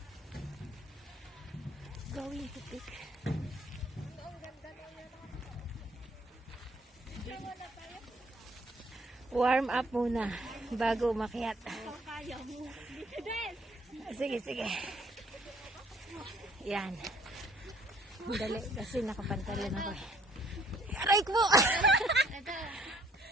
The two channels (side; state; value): both; normal; correlation 0.62